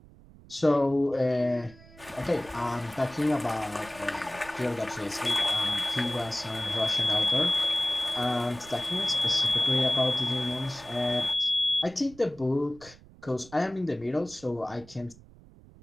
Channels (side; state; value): right; noise; rumble, 22 dB below the sound